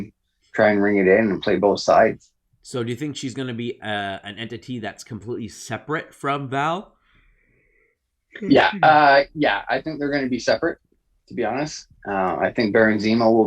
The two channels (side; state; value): both; identical; correlation 1.00